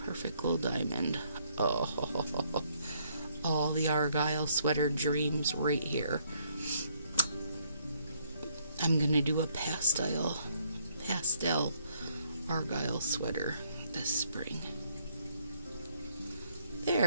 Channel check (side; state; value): both; inverted; correlation -0.68